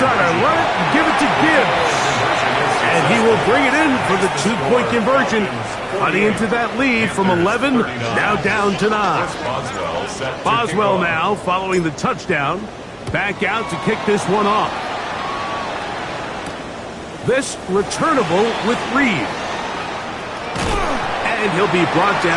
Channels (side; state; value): both; identical; correlation 1.00